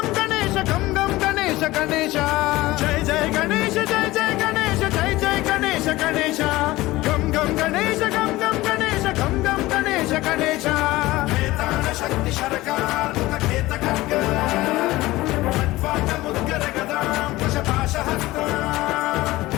గణేశ గం గం గణేశ గణేశ జయ జయ గణేశ జయ జయ గణేశ జయ జయ గణేశ గణేశ గం గం గణేశ గం గం గణేశ గం గం గణేశ గణేశ వేతాళ శక్తి శరకార్ ఖేత ఖడ్గ ఖడ్వాట ముద్గర గదాం కుశపాశ హస్త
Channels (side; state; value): right; quieter; 18.5 dB